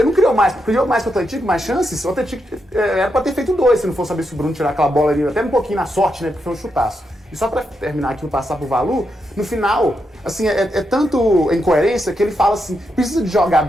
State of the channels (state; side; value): normal; both; correlation 0.83